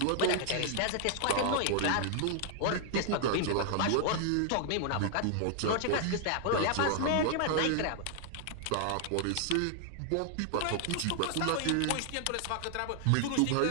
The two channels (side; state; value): both; different; correlation 0.00